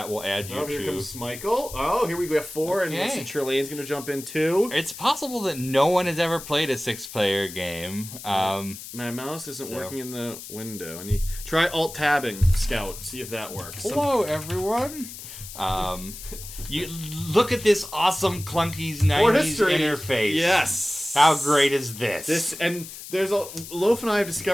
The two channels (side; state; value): left; noise; hiss, 12 dB below the sound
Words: will add you to... Here comes Michael. Oh, here we go. 4, and Trillaine's going to jump in too. It's possible that no one has ever played a 6-player game. My mouse isn't working in the window. I need try Alt-tabbing Scout. See if that works. Hello, everyone. You look at this awesome clunky 90s interface. Yes. How great is this? There's Loaf and I have